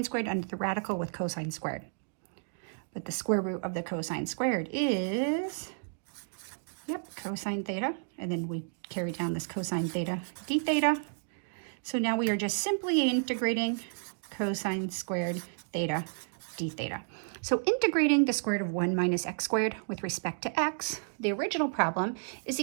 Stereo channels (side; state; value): left; silent; digital silence